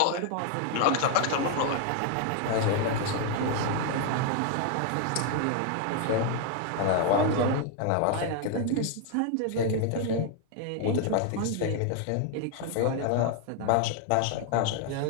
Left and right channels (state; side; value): different; both; correlation 0.00